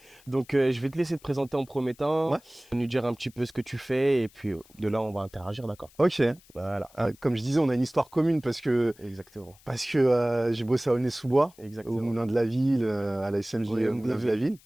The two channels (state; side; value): noise; left; hiss, 27 dB below the sound